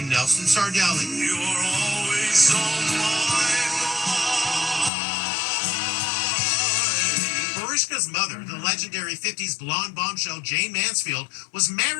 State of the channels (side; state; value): right; drops out; at 4.9 s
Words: Nelson Sardelli. You are always on my mind. Mariska's mother, the legendary 50s blonde bombshell Jayne Mansfield, was